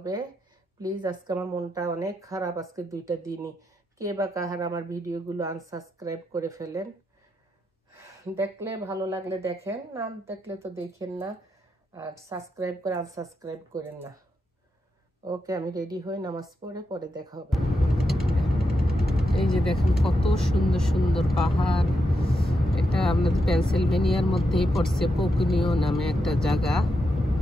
প্লিজ, আজকে আমার মনটা অনেক খারাপ, আজকে 2টা দিনই। কে বা কাহার আমার ভিডিওগুলো আনসাবস্ক্রাইব করে ফেলেন। দেখলে ভালো লাগলে দেখেন, না দেখলে তো দেখেন না। আর সাবস্ক্রাইব করে আনসাবস্ক্রাইব করেন না। ওকে, আমি রেডি হই, নামাজ পড়ে দেখা হবে। এই যে দেখেন কত সুন্দর সুন্দর পাহাড়। এটা আমাদের পেনসিলভেনিয়ার মধ্যেই পড়ছে, পোকুনিও নামে একটা জায়গা।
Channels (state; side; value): normal; both; correlation 0.84